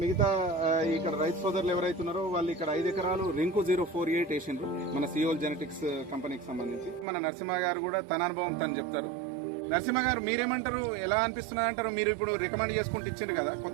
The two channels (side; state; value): left; drops out; at 7.1 s